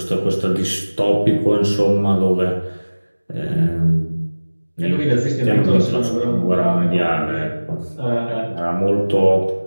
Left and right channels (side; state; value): both; inverted; correlation -1.00